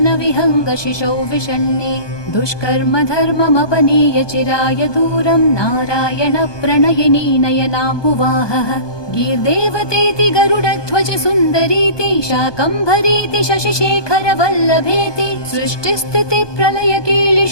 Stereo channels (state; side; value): late; right; 1.2 ms